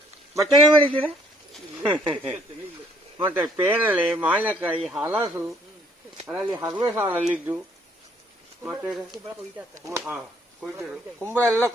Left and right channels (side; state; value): both; normal; correlation 0.63